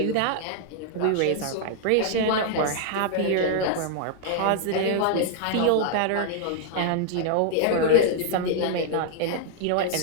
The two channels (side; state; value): both; different; correlation 0.00